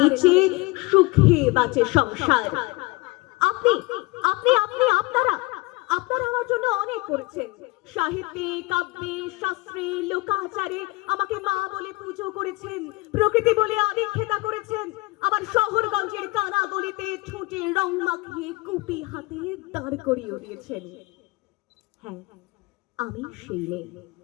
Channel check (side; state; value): right; quieter; 23.3 dB